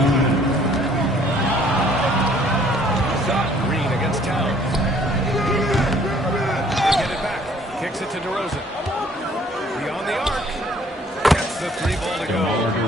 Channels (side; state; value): both; normal; correlation 0.59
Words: Shot Green against Towns. They get it back. Kicks it to DeRozan. Beyond the arc. Gets the 3 ball to go.